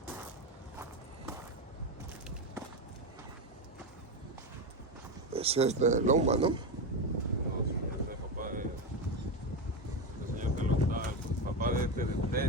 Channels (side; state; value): both; normal; correlation 0.14